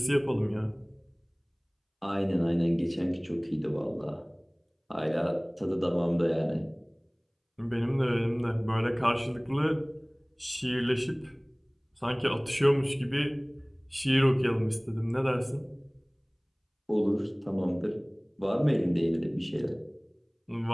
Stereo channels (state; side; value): identical; both; correlation 1.00